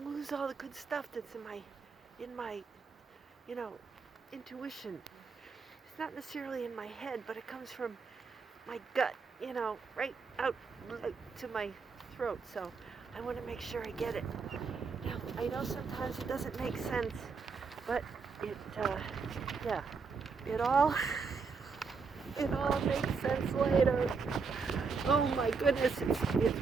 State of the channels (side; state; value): left; quieter; 5.0 dB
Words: lose all the good stuff that's in my, you know, intuition. It's not necessarily in my head, but it comes from my gut, right out to my throat. So I want to make sure I get it. Now, I know sometimes it doesn't make sense, but yeah, it all, it all makes sense later. Oh my goodness, it's